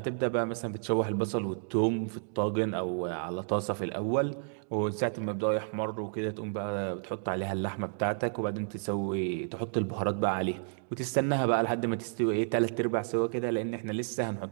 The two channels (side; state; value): left; silent; digital silence